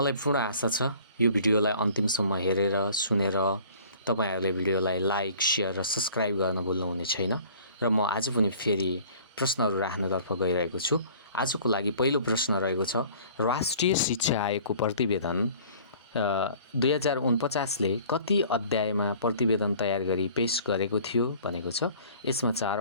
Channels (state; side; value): inverted; both; correlation -0.50